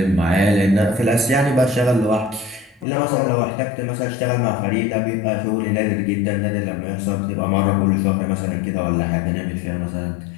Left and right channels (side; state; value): right; drops out; at 2.9 s